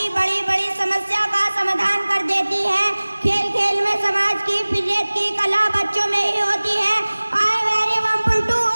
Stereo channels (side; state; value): both; inverted; correlation -1.00